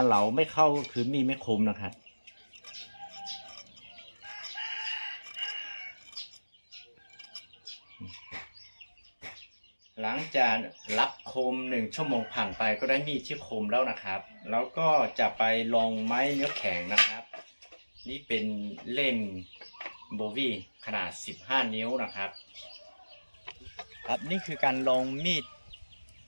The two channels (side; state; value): both; inverted; correlation -1.00